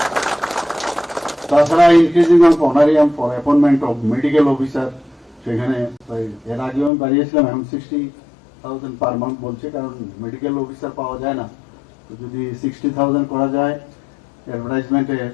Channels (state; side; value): drops out; right; at 6.9 s